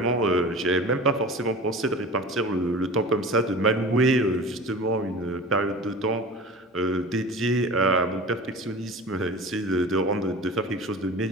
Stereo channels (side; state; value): both; normal; correlation 0.36